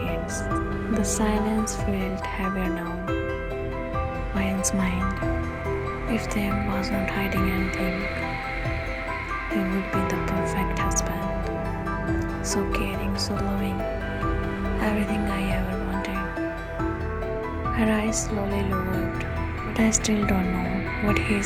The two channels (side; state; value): both; identical; correlation 1.00